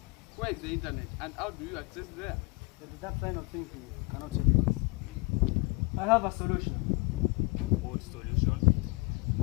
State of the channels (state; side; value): quieter; right; 26.7 dB